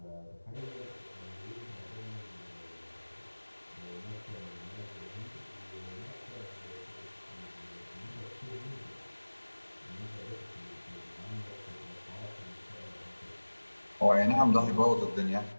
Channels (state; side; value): inverted; both; correlation -1.00